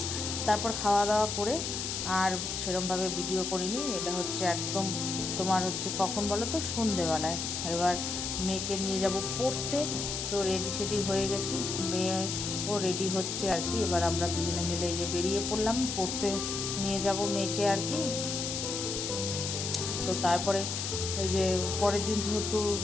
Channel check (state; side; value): noise; left; hiss, 3 dB below the sound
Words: তারপর খাওয়া দাওয়া করে আর সেরমভাবে ভিডিও করিনি, এটা হচ্ছে একদম তোমার হচ্ছে কখন বলো তো, সন্ধেবেলায়। এবার মেয়েকে নিয়ে যাব পড়তে, তো রেডি সেডি হয়ে গেছি, মেয়েও রেডি হচ্ছে আর কি। এবার আমরা দুজনে মিলে এই যে বেরিয়ে পড়লাম, পড়তে নিয়ে যাব মেয়েকে আর কি। তো তারপরে এই যে পরের দিন যেহেতু